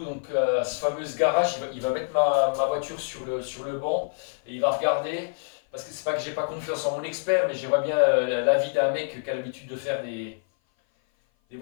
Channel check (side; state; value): right; silent; 56 dB below the other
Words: donc à ce fameux garage. Il va mettre ma voiture sur le banc et il va regarder. Parce que c'est pas que j'ai pas confiance en mon expert, mais j'aimerais bien l'avis d'un mec qui a l'habitude de faire des